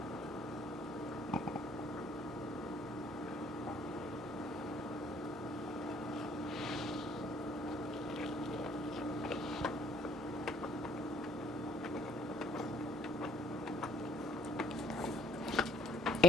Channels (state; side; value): normal; both; correlation 0.61